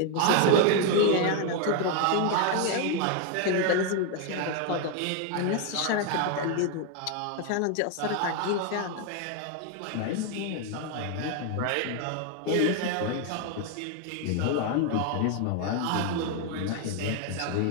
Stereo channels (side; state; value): both; different; correlation 0.01